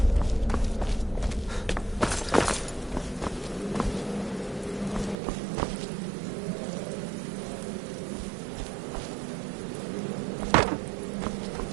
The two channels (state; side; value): drops out; left; at 5.2 s